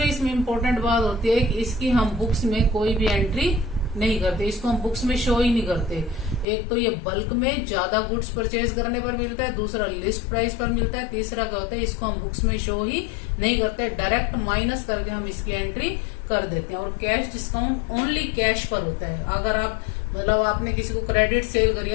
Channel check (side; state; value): right; drops out; at 6.5 s